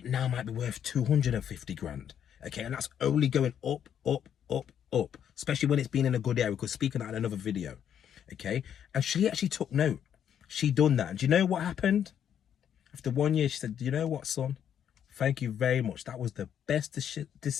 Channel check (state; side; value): quieter; right; 9.1 dB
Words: now might be worth 250 grand. Okay? And that's only going up, up, up, up, especially when it's been in a good area, because speaking out in another video. Okay, and she actually took note. She done that, and do you know what happened? After 1 year, she said, do you know what, son, thank you very much, that was the best